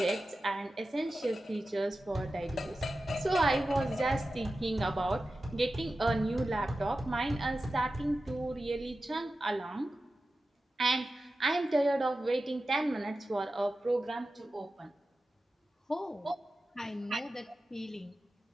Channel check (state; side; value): normal; both; correlation 0.93